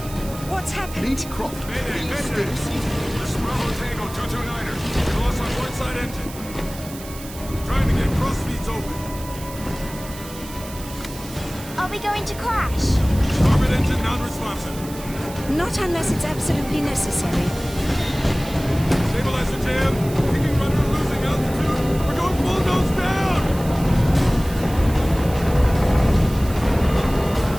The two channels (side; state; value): right; noise; hiss, 15 dB below the sound